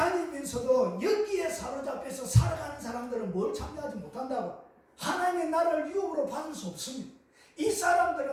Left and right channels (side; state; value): both; identical; correlation 1.00